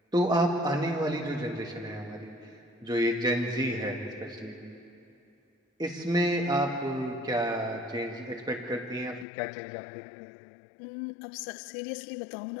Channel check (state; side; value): drops out; right; at 9.2 s